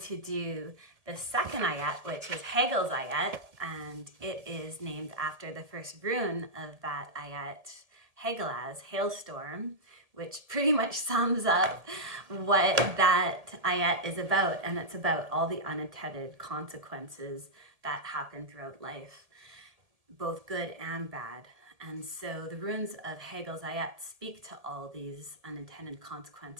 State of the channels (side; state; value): left; late; 1.8 ms